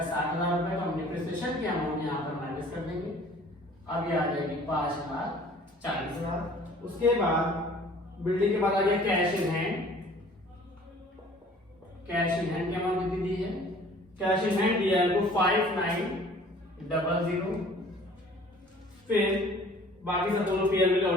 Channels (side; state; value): both; normal; correlation 0.51